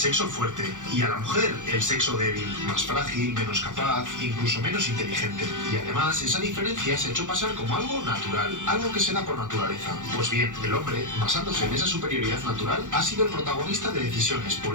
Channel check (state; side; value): late; left; 0.86 ms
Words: fuerte y a la mujer el sexo débil, más frágil, menos capaz, incluso menos inteligente. Y además, esa diferencia se ha hecho pasar como algo natural, algo que se da por naturaleza. Pues bien, el hombre, basándose en esa superioridad natural, ha sido el protagonista de decisiones